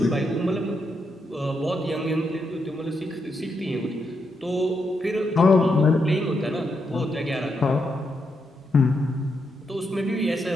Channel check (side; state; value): both; normal; correlation 0.82